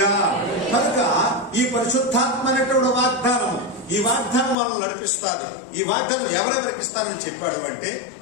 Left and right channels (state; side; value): drops out; right; at 4.5 s